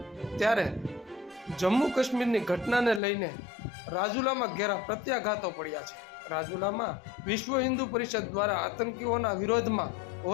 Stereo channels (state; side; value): drops out; right; at 3.0 s